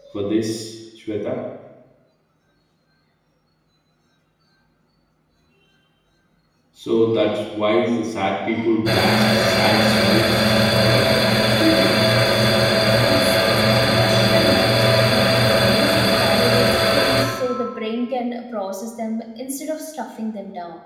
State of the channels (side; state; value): both; identical; correlation 1.00